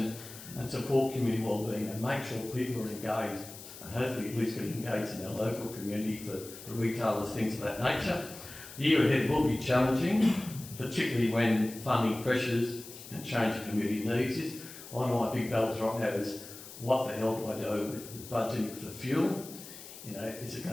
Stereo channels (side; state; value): left; noise; hiss, 15 dB below the sound